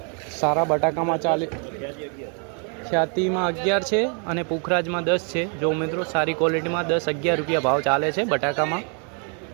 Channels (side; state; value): left; quieter; 39.7 dB